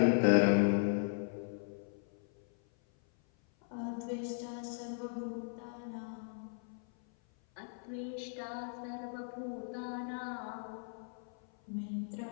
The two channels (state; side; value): silent; right; 53 dB below the other